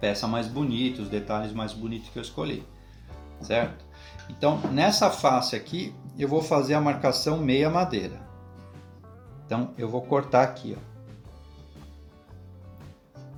mais bonita, os detalhes mais bonitos que eu escolhi, certo? Então, nessa face aqui, eu vou fazer a marcação meia madeira. Então, eu vou cortar aqui, ó.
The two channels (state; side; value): identical; both; correlation 1.00